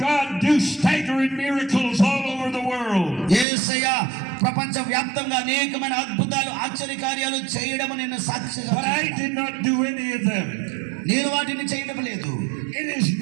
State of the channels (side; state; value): left; drops out; at 3.5 s